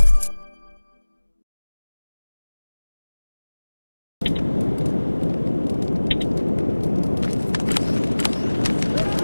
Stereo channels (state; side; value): inverted; both; correlation -1.00